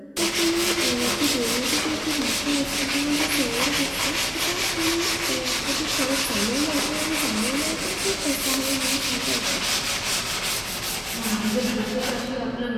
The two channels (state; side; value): identical; both; correlation 1.00